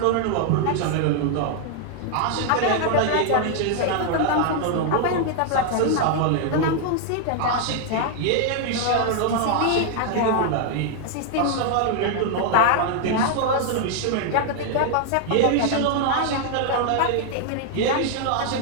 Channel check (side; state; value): both; different; correlation 0.00